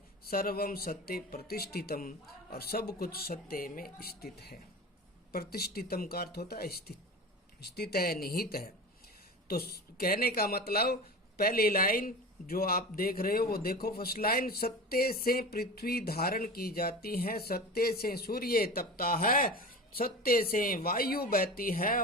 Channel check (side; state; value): both; normal; correlation 0.31